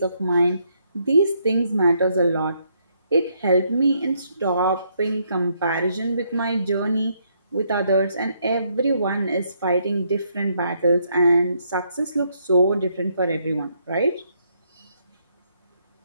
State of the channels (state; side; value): inverted; both; correlation -0.74